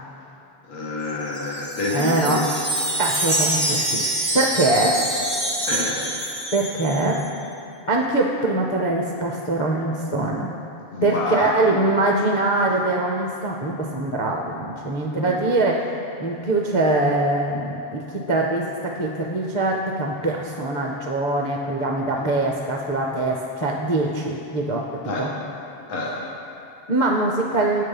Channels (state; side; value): late; right; 7.4 ms